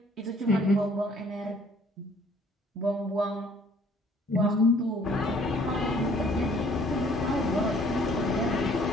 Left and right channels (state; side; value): normal; both; correlation 0.58